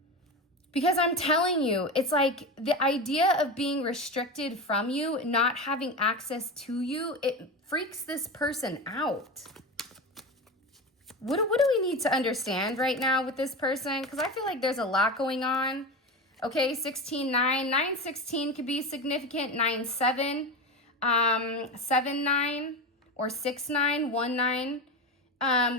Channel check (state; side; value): normal; both; correlation 0.22